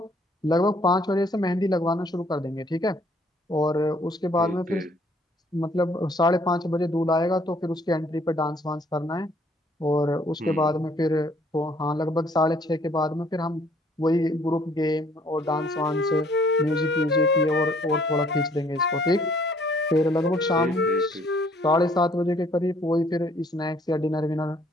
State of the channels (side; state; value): both; normal; correlation 0.62